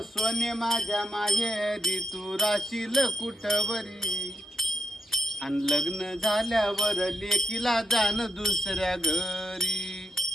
सोने माझ्या माहेरी तू राशील कुठवरी. अन लग्न झाल्यावर लेकीला जाण दुसऱ्या घरी.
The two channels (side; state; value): both; normal; correlation 0.84